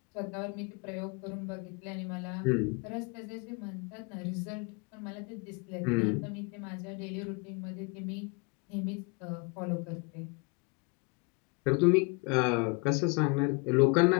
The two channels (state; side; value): quieter; right; 30.1 dB